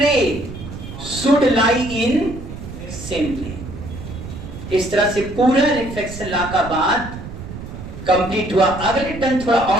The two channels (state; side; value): noise; right; rumble, 11 dB below the sound